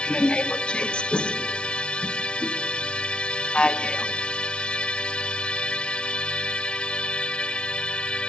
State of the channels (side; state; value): right; late; 0.056 ms